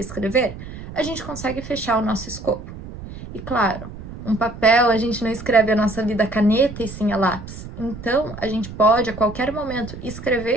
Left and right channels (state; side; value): noise; right; rumble, 12 dB below the sound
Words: a gente consegue fechar o nosso escopo. E claro, um papel, a gente não escreve a nossa vida a caneta e sim a lápis. Então, a gente pode, a qualquer momento,